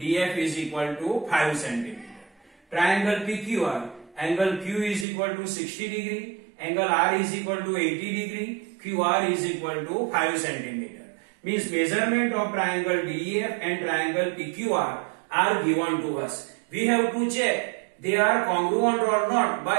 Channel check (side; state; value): left; drops out; at 5.1 s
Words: is equal to 5 centimeter. Triangle PQR, angle Q is equal to 60 degree, angle R is equal to 80 degree, QR is equal to 5 centimeter. Means measurement of triangle DEF and triangle PQR are given to us. We have to check they are congruent or not